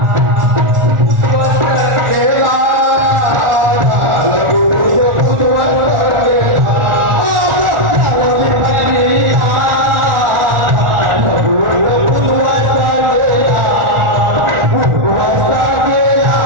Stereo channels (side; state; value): left; late; 1.4 ms